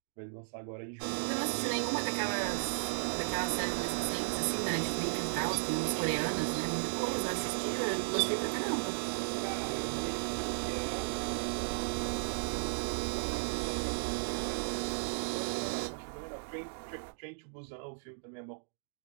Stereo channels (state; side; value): silent; left; digital silence